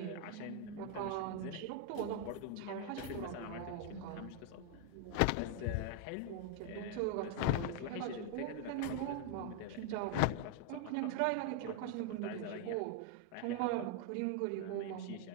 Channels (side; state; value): both; different; correlation 0.00